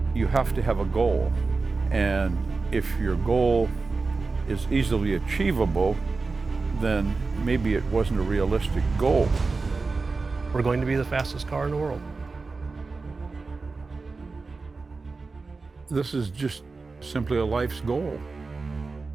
You have to have a goal, and if your goal is easily achievable, then maybe it wasn't a realistic goal. we're going to be the fastest car in the world. This is just simply a life's goal.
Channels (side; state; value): left; quieter; 4.0 dB